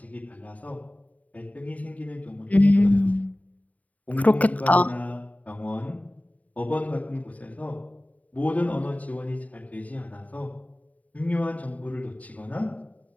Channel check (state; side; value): late; right; 0.071 ms